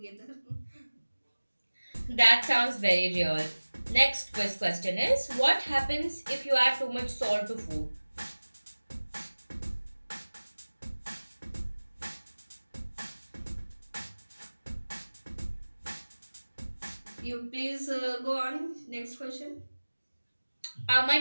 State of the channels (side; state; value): both; inverted; correlation -1.00